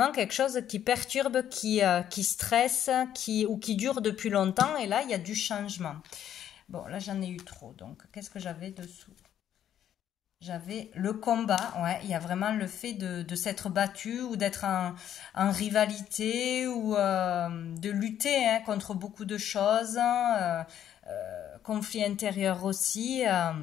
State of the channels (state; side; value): quieter; right; 10.4 dB